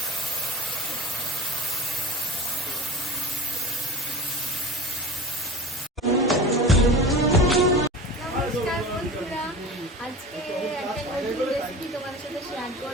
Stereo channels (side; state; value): both; normal; correlation 0.34